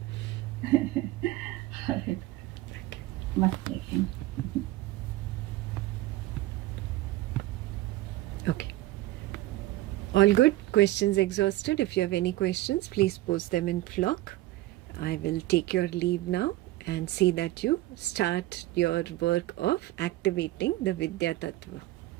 All right. Much taken. Okay. All good? Questions exhausted? If you have any questions, please post them in Flock. I will take your leave now and see that you start your work of activating the Vidya Tattva.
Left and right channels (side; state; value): left; quieter; 16.9 dB